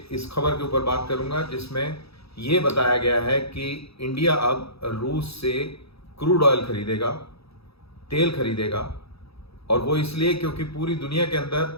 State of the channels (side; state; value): right; late; 0.77 ms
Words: इस खबर के ऊपर बात करूंगा जिसमें ये बताया गया है कि इंडिया अब रूस से क्रूड ऑयल खरीदेगा, तेल खरीदेगा। और वो इसलिए क्योंकि पूरी दुनिया के अंदर